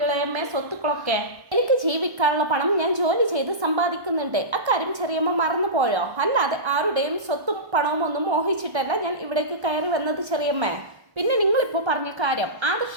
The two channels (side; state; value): left; late; 1.3 ms